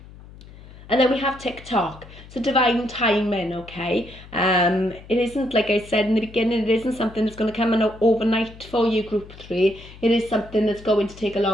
And then we have TikTok. So divine timing, okay? It isn't, like I said in the beginning, it isn't something that's going to come in overnight for you, group 3. It is something that's going to take a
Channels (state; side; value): noise; left; hum, 19 dB below the sound